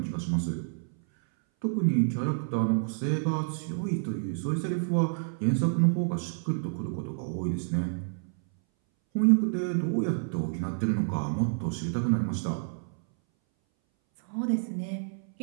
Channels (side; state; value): left; silent; 59 dB below the other